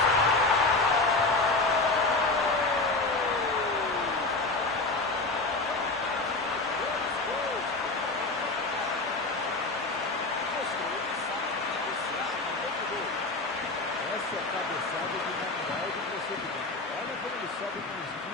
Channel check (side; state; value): right; quieter; 3.3 dB